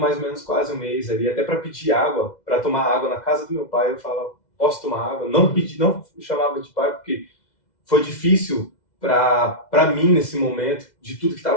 ou menos quase um mês ali, até para pedir água, para tomar água na casa do meu pai, eu falava, posso tomar água? Não chamava de pai, porque foi difícil para mim nesse momento, de tudo que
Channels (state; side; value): late; right; 2.0 ms